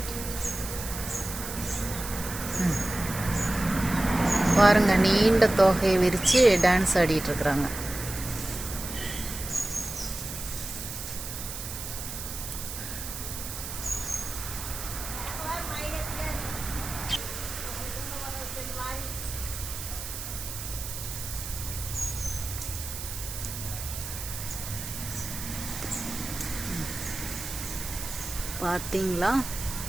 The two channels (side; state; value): right; noise; hiss, 8 dB below the sound